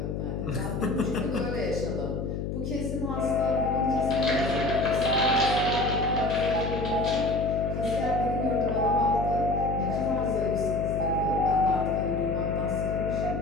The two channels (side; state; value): left; noise; hum, 3 dB below the sound